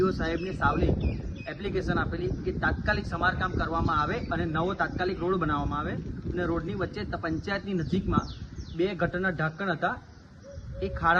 સાહેબને સાવલી એપ્લિકેશન આપેલી કે તાત્કાલિક સમારકામ કરવામાં આવે અને નવો તાત્કાલિક રોડ બનાવવામાં આવે. અને રોડની વચ્ચે પંચાયતની નજીકમાં 2 ગટરના ઢાંકણ હતા, એ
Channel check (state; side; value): identical; both; correlation 1.00